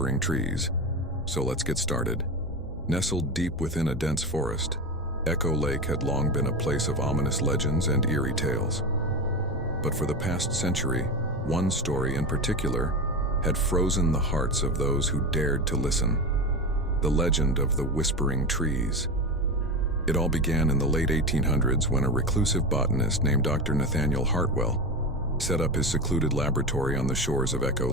Trees. So let's get started. Nestled deep within a dense forest, Echo Lake had long been a place of ominous legends and eerie tales. But for the past century, one story in particular had frozen the hearts of those who dared to listen. The legend of the Whispering Trees. It all began in the late 1800s when a reclusive botanist named Dr. Nathaniel Hartwell set up his secluded laboratory on the shores of Echo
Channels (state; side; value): normal; both; correlation 0.21